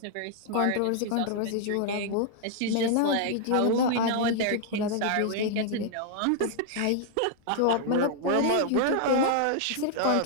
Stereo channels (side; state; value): both; different; correlation 0.00